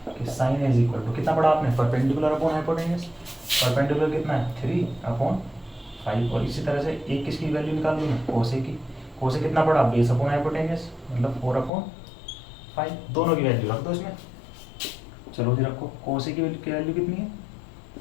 कि साइन इज इक्वल टू कितना पढ़ा आपने परपेंडिकुलर अपॉन हाइपोटेन्यूस। परपेंडिकुलर कितना है 3/5, और इसी तरह से एक किसकी वैल्यू निकाल लूँ मैं कोसे की। कोसे कितना पड़ा बेस अपॉन हाइपोटेन्यूस मतलब 4/5, दोनों की वैल्यू रख दो इसमें। चलो जी रखो, कोसे की वैल्यू कितनी है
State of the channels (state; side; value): drops out; right; at 11.7 s